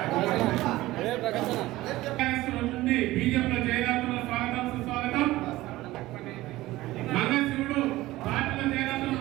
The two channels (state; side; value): quieter; left; 17.5 dB